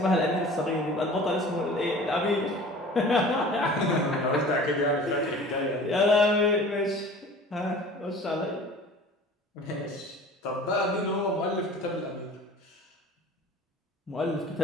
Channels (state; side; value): normal; both; correlation 0.43